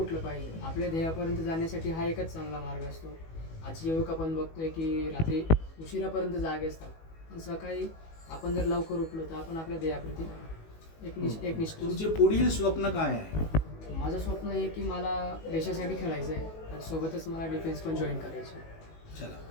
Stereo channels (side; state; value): right; late; 19 ms